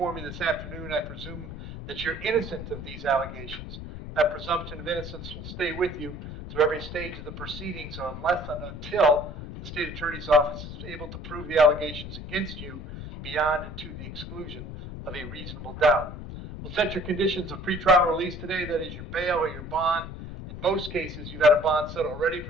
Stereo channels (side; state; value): left; noise; rumble, 10 dB below the sound